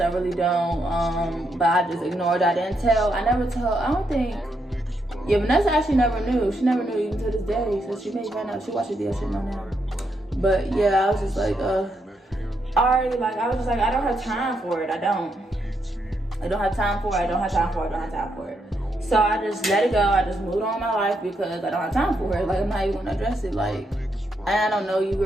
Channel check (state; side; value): normal; both; correlation 0.79